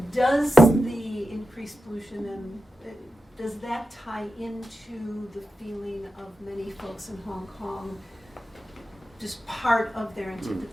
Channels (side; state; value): both; normal; correlation 0.91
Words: does the increased pollution and does that tie into the feeling of many folks in Hong Kong, just part of their